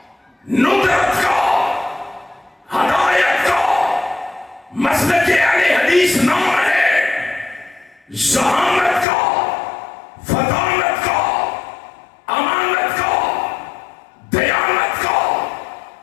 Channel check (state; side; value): drops out; right; at 9.1 s